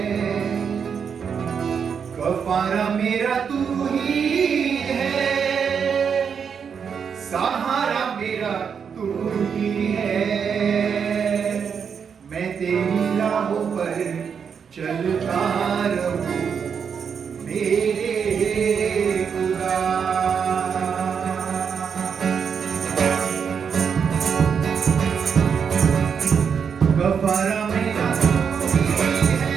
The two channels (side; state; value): left; quieter; 6.8 dB